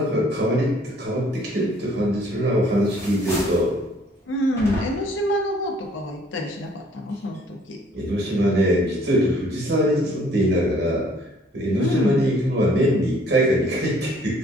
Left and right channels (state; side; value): normal; both; correlation 0.59